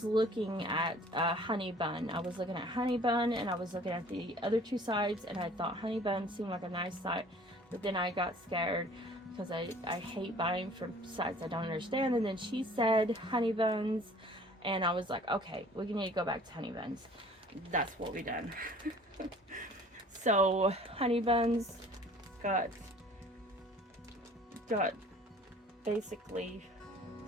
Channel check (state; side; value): normal; both; correlation 0.51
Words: looking at honey bun. I was looking at honey bun and I was looking at the other two sides, and I thought honey bun seemed like a nice side, but then I got scared because I hate buying from sites I don't understand. And then she said honey buns, and I was like, okay, we need to go back to honey buns. That's what we done. So honey buns got basically